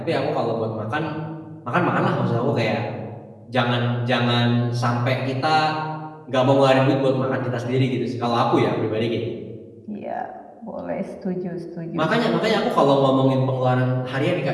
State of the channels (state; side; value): identical; both; correlation 1.00